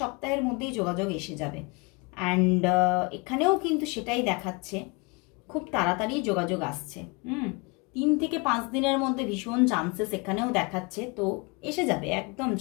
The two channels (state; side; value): quieter; right; 29.0 dB